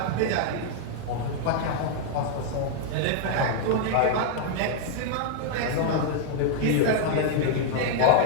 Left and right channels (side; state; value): both; different; correlation 0.00